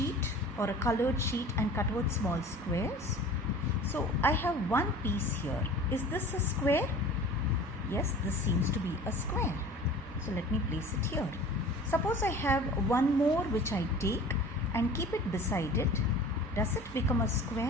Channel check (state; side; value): normal; both; correlation 0.42